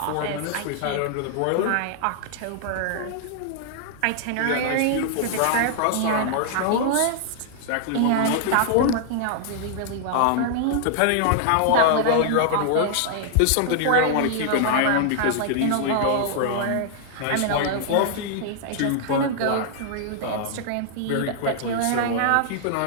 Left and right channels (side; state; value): both; different; correlation -0.01